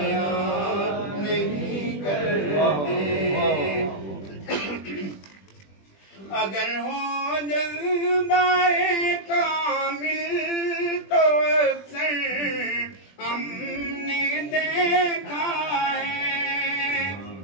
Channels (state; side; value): late; right; 20 ms